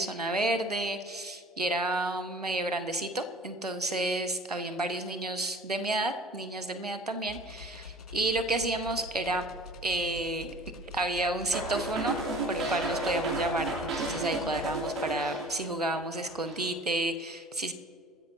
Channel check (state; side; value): normal; both; correlation 0.46